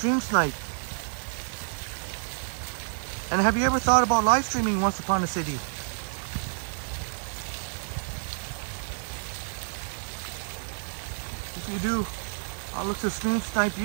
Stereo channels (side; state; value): left; silent; digital silence